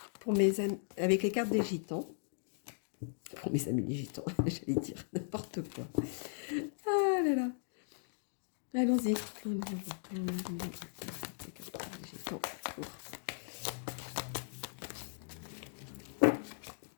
pour mes amis, avec les cartes des gitans. Pour mes amis les gitans, j'allais dire n'importe quoi. Ah là là. Allons-y.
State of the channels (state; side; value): silent; right; digital silence